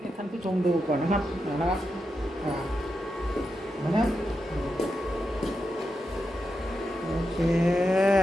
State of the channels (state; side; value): normal; both; correlation 0.87